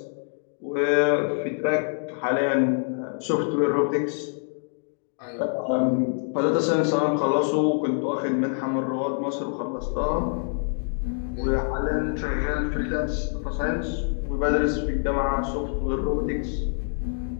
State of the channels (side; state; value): right; silent; digital silence